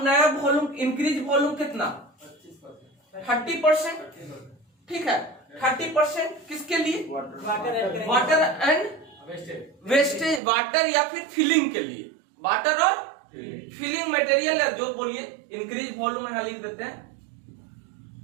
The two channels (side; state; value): left; drops out; at 10.4 s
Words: नया वॉल्यूम, इंक्रीज वॉल्यूम कितना? 30%। ठीक है, 30% किसके लिए? वाटर एंड वेस्टेज, वाटर या फिर फिलिंग के लिए, वाटर और फिलिंग मटेरियल या जो बोलिए। इंक्रीज वॉल्यूम यहां लिख देते हैं।